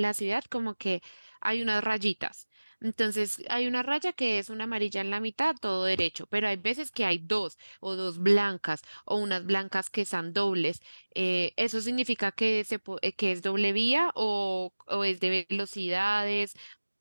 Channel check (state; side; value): inverted; both; correlation -1.00